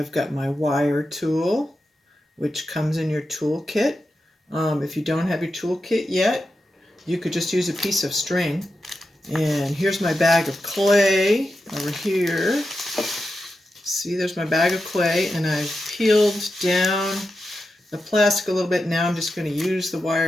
got my wire tool, which comes in your tool kit. If you don't have your tool kit yet, you could just use a piece of string. And here's my bag of clay over here. See, there's my bag of clay, and I've peeled down the plastic a little bit. Now I'm just going to use the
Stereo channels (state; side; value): normal; both; correlation 0.89